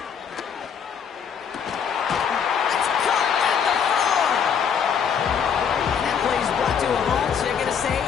It's caught at the 4. That play is brought to a halt, so they're going to say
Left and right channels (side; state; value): right; quieter; 7.2 dB